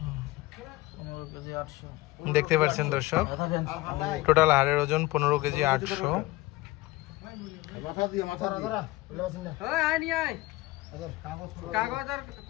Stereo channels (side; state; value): right; quieter; 19.4 dB